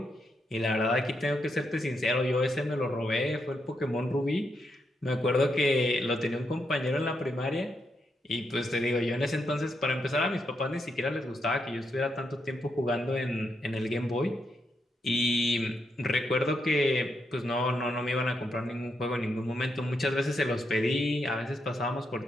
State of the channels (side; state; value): both; normal; correlation 0.81